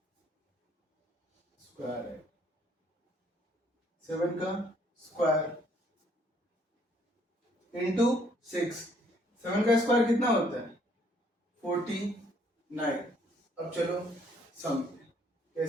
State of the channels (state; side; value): normal; both; correlation 0.65